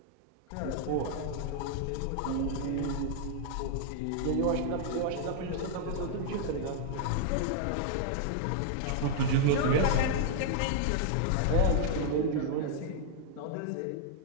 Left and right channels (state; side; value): different; both; correlation -0.01